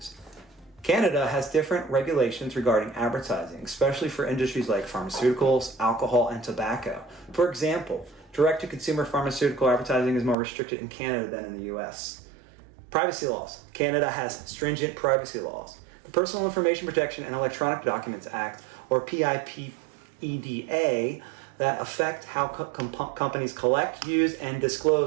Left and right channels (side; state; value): left; drops out; at 10.4 s